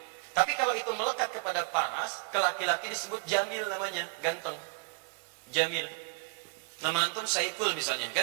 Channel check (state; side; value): quieter; left; 33.3 dB